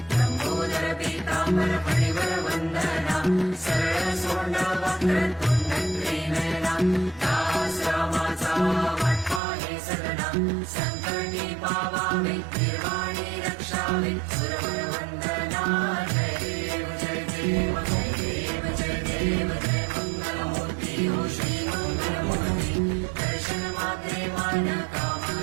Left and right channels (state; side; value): drops out; left; at 9.4 s